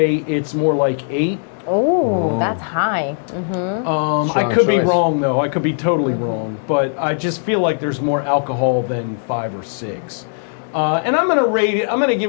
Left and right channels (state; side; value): silent; right; digital silence